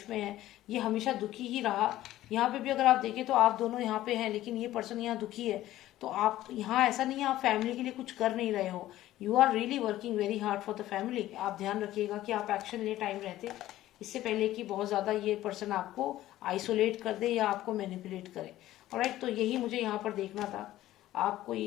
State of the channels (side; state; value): right; quieter; 14.6 dB